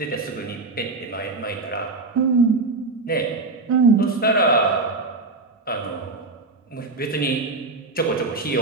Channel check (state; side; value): quieter; left; 3.6 dB